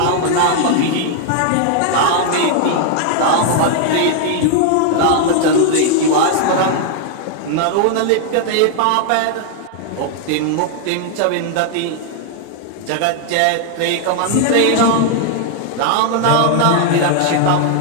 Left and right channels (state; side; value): different; both; correlation 0.00